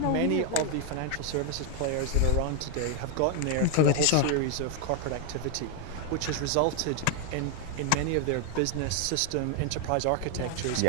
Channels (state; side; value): different; both; correlation 0.01